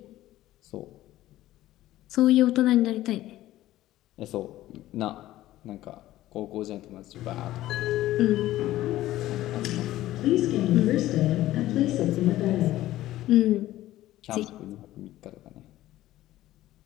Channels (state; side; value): quieter; right; 15.0 dB